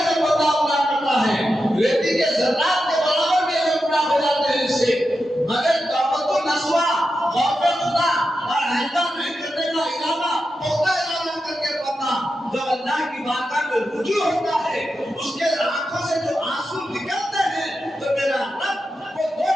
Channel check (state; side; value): normal; both; correlation 0.89